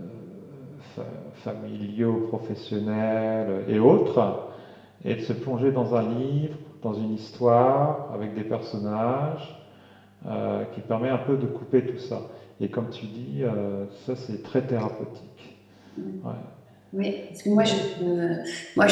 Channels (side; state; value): both; identical; correlation 1.00